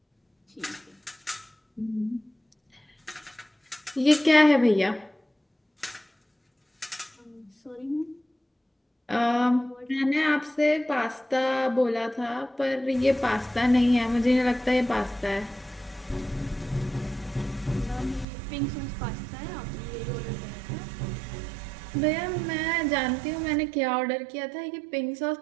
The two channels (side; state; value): left; drops out; at 18.2 s